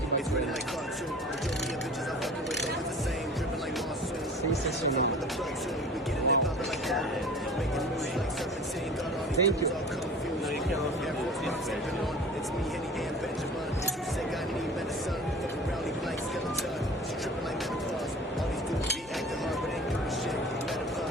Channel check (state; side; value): normal; both; correlation 0.41